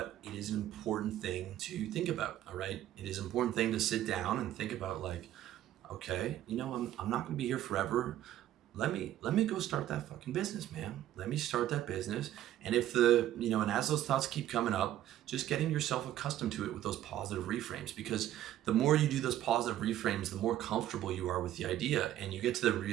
it is an important thing to think about, all right? It is an important thing to sit down and think about like, okay, I'm not going to be here forever. Let me go start that fucking business, man. Let me start that business. And if and as those thoughts keep coming up, just getting yourself accustomed to it with those positive reframes, because the more you do those positive reframes, the more comfortable you are with the idea. And you get to the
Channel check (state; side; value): quieter; left; 12.6 dB